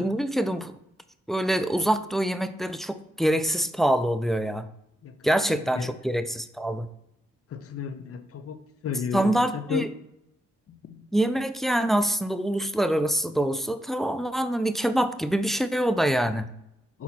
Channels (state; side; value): normal; both; correlation 0.86